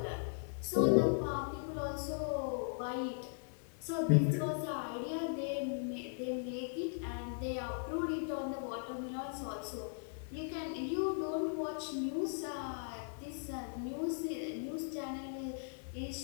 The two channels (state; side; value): silent; right; 52 dB below the other